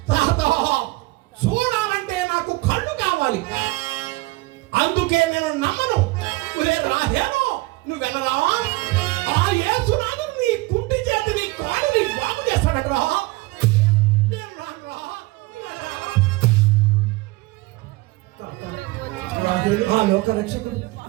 తాత, చూడాలంటే నాకు కళ్ళు కావాలి, అందుకే నేను నమ్మను. ఒరే రాహేలో, నువ్వెనరా ఆ యేసునాడు నీ కుంటి చేతి నీ కాలుని బాగు చేస్తాడటరా. నేను రానురా. ఆ లోక రక్షకుడు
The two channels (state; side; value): quieter; left; 21.7 dB